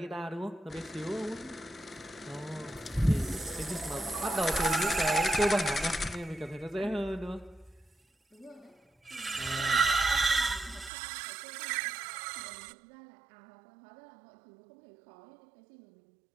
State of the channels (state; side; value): drops out; left; at 10.9 s